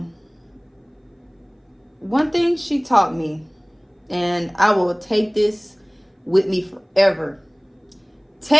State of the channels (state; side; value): identical; both; correlation 1.00